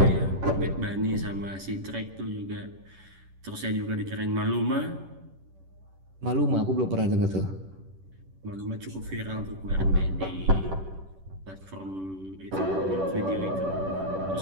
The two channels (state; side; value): late; left; 10 ms